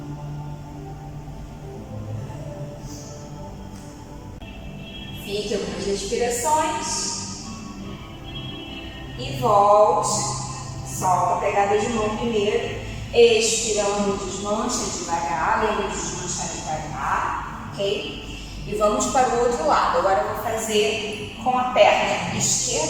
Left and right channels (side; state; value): both; identical; correlation 1.00